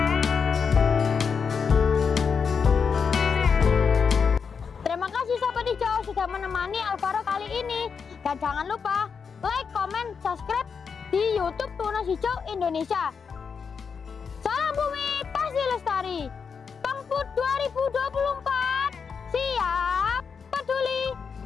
Sudah menemani Alvaro kali ini, dan jangan lupa like, comment, subscribe di YouTube Tunas Hijau Indonesia. Salam bumi pasti lestari. Pangput 2024 siap, peduli,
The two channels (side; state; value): right; quieter; 6.0 dB